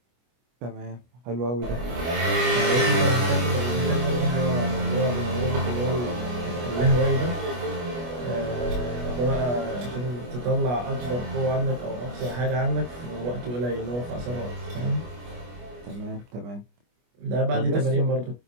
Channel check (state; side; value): late; left; 25 ms